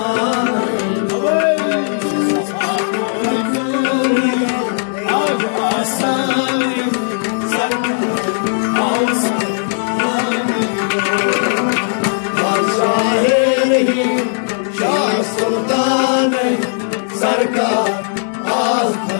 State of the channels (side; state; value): right; silent; digital silence